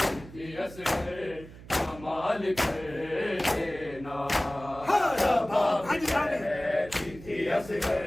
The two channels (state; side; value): noise; right; hum, 17 dB below the sound